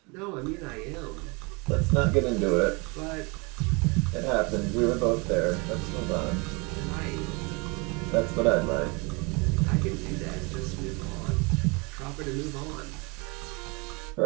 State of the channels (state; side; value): quieter; left; 29.3 dB